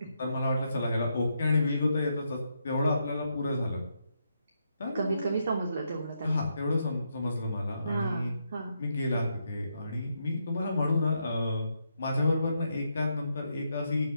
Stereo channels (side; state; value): both; inverted; correlation -0.80